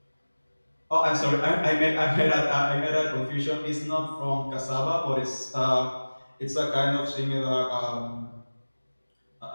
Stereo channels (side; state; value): both; inverted; correlation -1.00